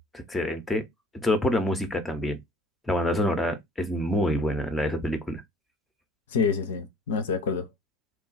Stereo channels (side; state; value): both; normal; correlation 0.52